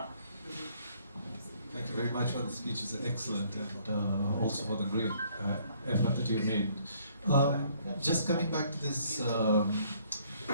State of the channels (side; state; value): both; inverted; correlation -0.63